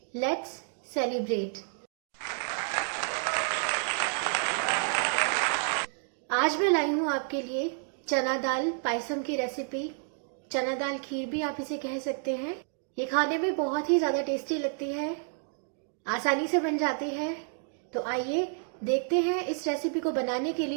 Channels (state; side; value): silent; left; 58 dB below the other